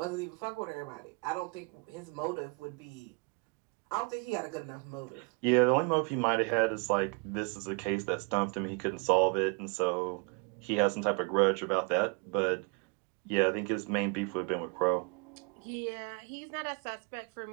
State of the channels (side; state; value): left; quieter; 33.3 dB